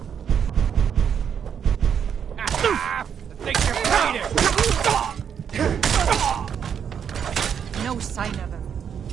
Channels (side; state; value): left; quieter; 7.9 dB